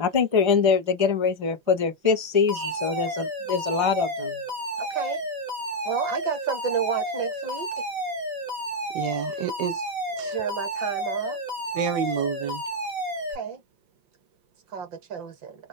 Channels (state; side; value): late; left; 5.3 ms